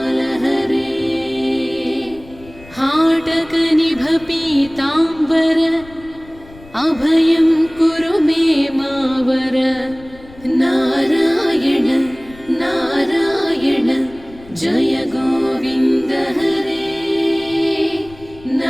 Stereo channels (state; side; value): noise; left; rumble, 21 dB below the sound